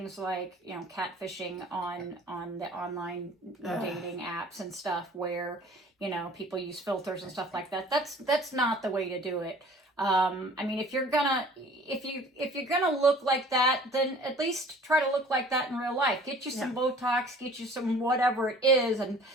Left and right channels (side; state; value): both; normal; correlation 0.49